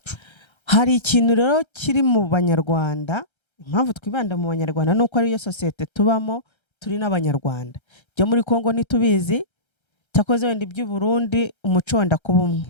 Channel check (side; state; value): right; late; 1.3 ms